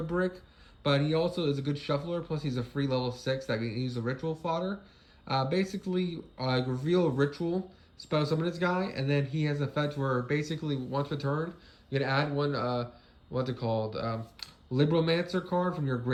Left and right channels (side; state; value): both; identical; correlation 1.00